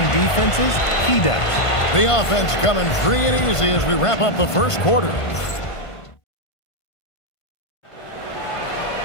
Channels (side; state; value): right; late; 1.5 ms